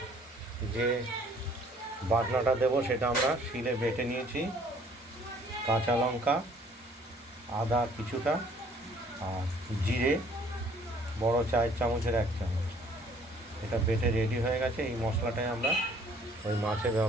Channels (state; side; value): normal; both; correlation 0.58